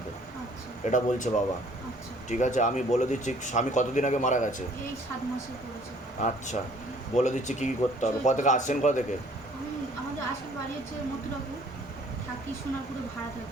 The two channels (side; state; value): both; normal; correlation 0.57